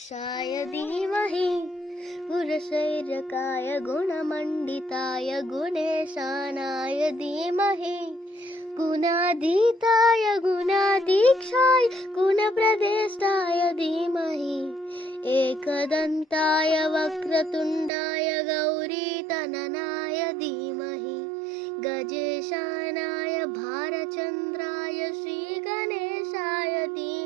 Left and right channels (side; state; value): left; drops out; at 17.9 s